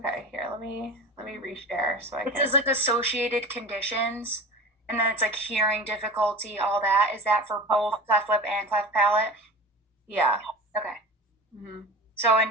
Here, let me reshare so I It can. says like associated conditions, and then it's like hearing difficulty, all that. Is that for both cleft lip and cleft palate? Yeah. Okay. Mm-hmm. So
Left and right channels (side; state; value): both; normal; correlation 0.33